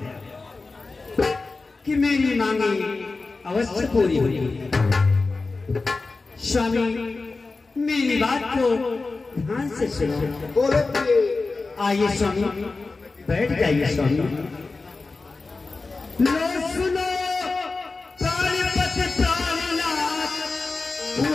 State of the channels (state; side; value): quieter; right; 3.8 dB